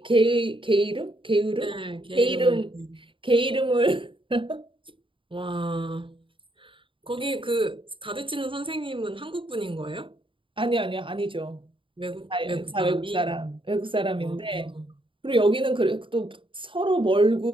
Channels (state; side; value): late; left; 0.25 ms